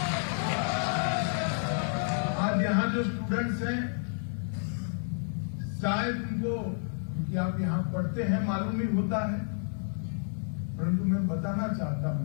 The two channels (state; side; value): silent; right; digital silence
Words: आज यहाँ जो स्टूडेंट्स हैं शायद उनको, क्योंकि आप यहाँ पढ़ते हैं, मालूम ही होता है, परंतु मैं बताना चाहता